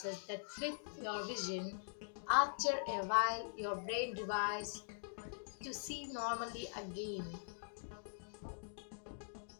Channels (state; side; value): silent; right; digital silence